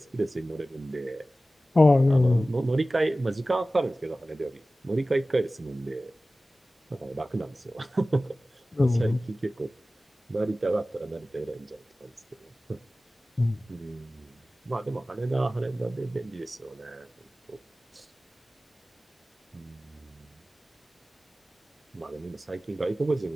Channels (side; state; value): both; normal; correlation 0.96